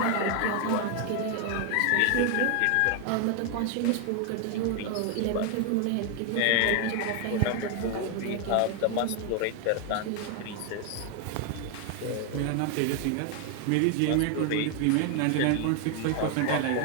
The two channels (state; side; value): different; both; correlation 0.01